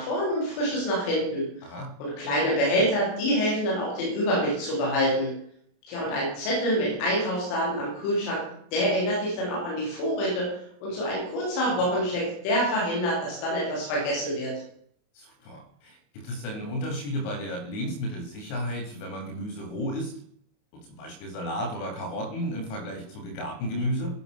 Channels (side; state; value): right; late; 28 ms